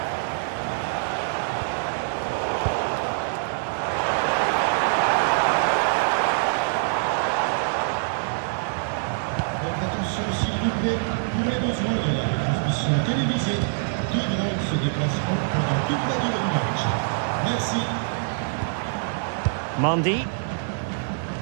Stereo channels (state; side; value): silent; left; digital silence